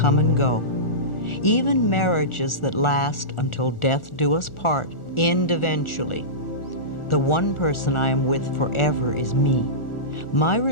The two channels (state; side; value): late; right; 1.4 ms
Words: and go. Even marriages that last until death do us part end eventually. The one person I am with forever is me. My